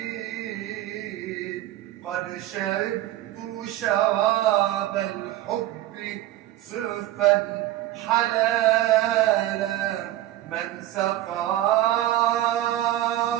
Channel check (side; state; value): left; quieter; 14.4 dB